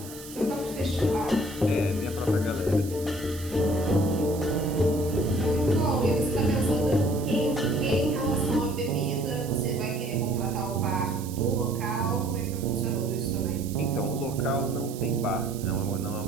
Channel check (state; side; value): noise; right; hiss, 15 dB below the sound